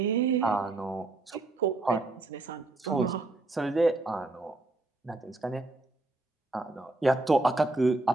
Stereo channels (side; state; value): left; quieter; 3.1 dB